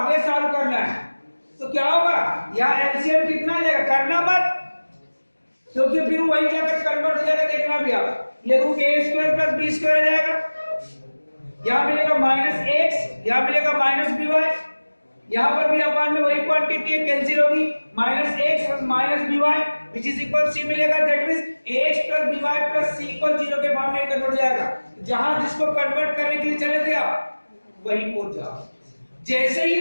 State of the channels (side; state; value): both; inverted; correlation -1.00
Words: सॉल्व करना है, तो क्या होगा, यहाँ एलसीएम कितना जाएगा, करना मत, क्योंकि फिर वही जाकर कन्वर्ट हो जाएगा। देखना भी आप, ये रूट ए स्क्वायर प्लस बी स्क्वायर आ जाएगा, यहाँ मिलेगा माइनस एक्स, यहाँ मिलेगा माइनस बी वाई, यहाँ पर भी अपान में वही क्वांटिटी है, कैंसिल होगी, minus X plus minus B Y which is equal C मिलेगा, that means ax plus B Y plus C equal 0 के फॉर्म में कन्वर्ट हो जाएगा। जहां जिसको कन्वर्ट करने के लिए चले थे आप वहीं पहुंच जाओ। जैसे ही